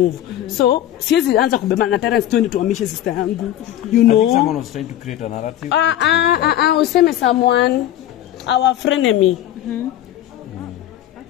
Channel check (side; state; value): right; quieter; 12.4 dB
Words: So siwezi anza kubebana na Terence twende tuhamishe sister yangu. You know. I think someone was trying to create a narrative. Useme someone, our frenemy.